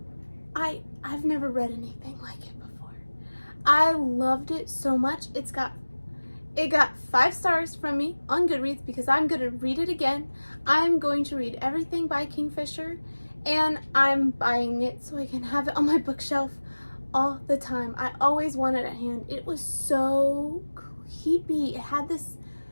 I've never read anything like it before. I loved it so much. It got 5 stars from me on Goodreads because I'm going to read it again. I'm going to read everything by Kingfisher, and I'm buying it so I can have it on my bookshelf all the time. I always want it at hand. It was so creepy. It had this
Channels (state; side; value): inverted; both; correlation -1.00